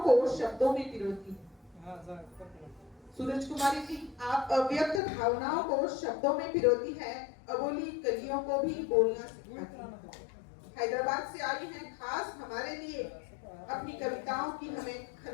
को शब्दों में पिरोती हैं। सूरज कुमारी जी, आप अव्यक्त भावनाओं को शब्दों में पिरोती है, अबोली कलियों को भी बोलना सिखाती है। हैदराबाद से आई हैं खास हमारे लिए, अपनी कविताओं की हमें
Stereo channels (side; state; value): right; drops out; at 5.0 s